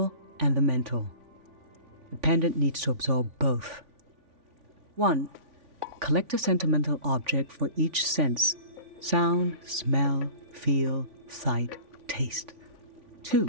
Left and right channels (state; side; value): late; left; 3.5 ms